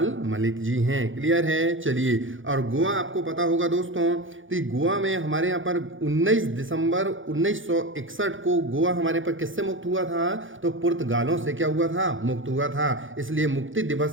मलिक जी हैं। क्लियर है, चलिए। और गोवा आपको पता होगा दोस्तों, तो गोवा में हमारे यहाँ पर 19 दिसंबर 1961 को गोवा हमारे पर किससे मुक्त हुआ था, तो पुर्तगालों से क्या हुआ था, मुक्त हुआ था। इसलिए मुक्ति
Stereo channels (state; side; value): late; left; 0.57 ms